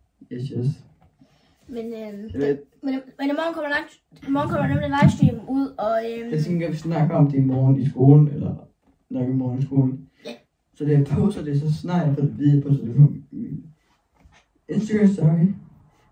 Yes. Men i morgen kommer nemlig livestream ud, og jeg tænker, at vi snakker om det i morgen i skolen, eller nok i morgen i skolen. Ja. Så det jeg poster det, så snart jeg får det videre på, så det på min Instagram story,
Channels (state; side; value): identical; both; correlation 1.00